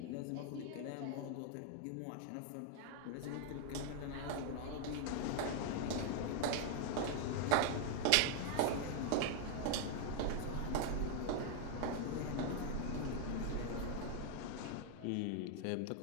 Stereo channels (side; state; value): both; different; correlation 0.00